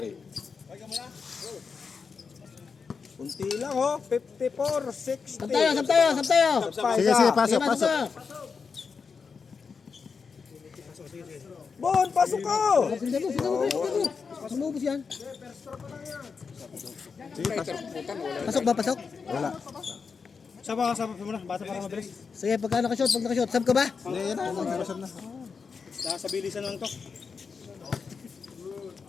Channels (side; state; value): right; quieter; 5.4 dB